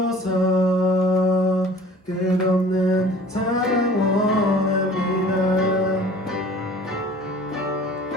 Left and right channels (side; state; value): both; normal; correlation 0.48